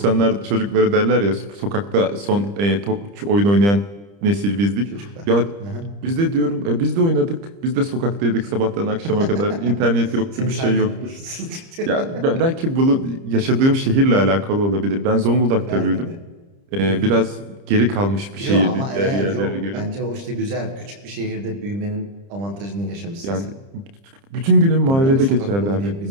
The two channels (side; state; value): left; late; 30 ms